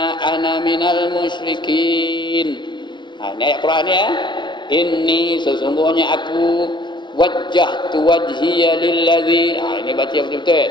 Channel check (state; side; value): late; right; 0.23 ms